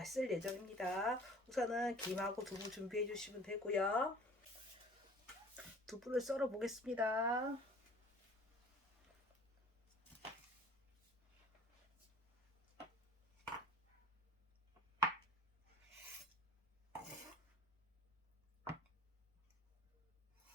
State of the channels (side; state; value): both; normal; correlation 0.49